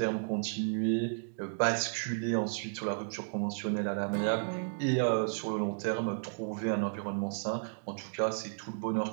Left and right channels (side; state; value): left; silent; digital silence